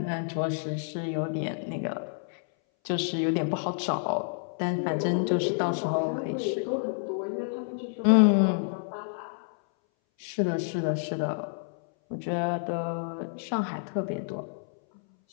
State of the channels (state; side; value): silent; right; 59 dB below the other